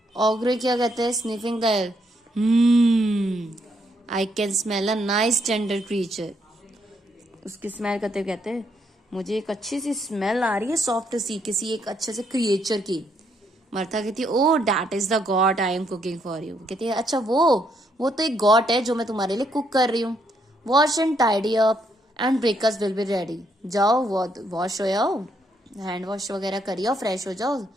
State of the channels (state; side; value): normal; both; correlation 0.74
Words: ऑग्रे क्या कहते हैं, sniffing the air, I can smell a nice tender creature. उसकी स्मेल करते हुए कहते हैं, मुझे एक अच्छी सी स्मेल आ रही है सॉफ्ट सी, किसी एक अच्छे से क्रिएचर की। मर्था कहती है, oh that is the god I am cooking for you. कहती है, अच्छा वो तो एक गॉड है जो मैं तुम्हारे लिए कुक कर रही हूँ। Wash and tidy up and breakfast will be ready. जाओ वॉश हो जाओ, हैंड वॉश वगैरह करिए, फ्रेश हो जाओ,